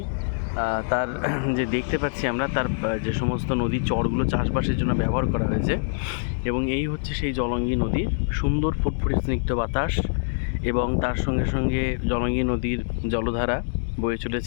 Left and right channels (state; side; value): silent; right; digital silence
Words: তার যে দেখতে পাচ্ছি আমরা, তার যে সমস্ত নদীর চরগুলো চাষবাসের জন্য ব্যবহার করা হয়েছে। এবং এই হচ্ছে সেই জলঙ্গি নদীর সুন্দর ফুটফুটে স্নিগ্ধ বাতাস, এবং তার সঙ্গে সঙ্গে জলঙ্গি নদীর জলধারা বয়ে